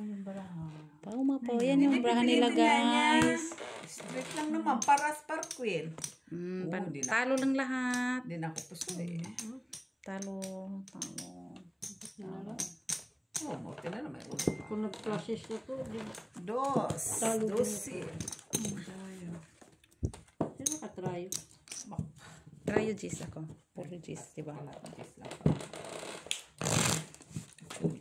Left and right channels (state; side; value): identical; both; correlation 1.00